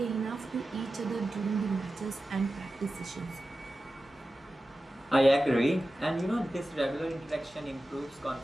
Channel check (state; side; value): normal; both; correlation 0.94